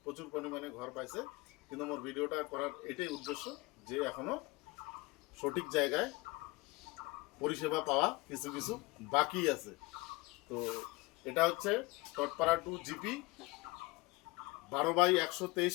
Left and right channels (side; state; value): right; quieter; 22.8 dB